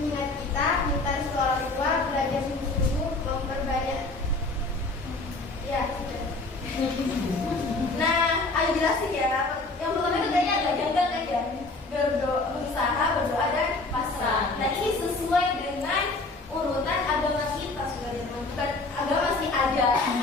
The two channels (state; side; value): quieter; right; 3.2 dB